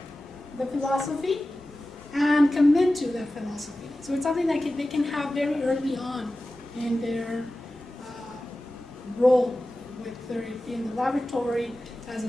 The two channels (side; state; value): both; normal; correlation 0.95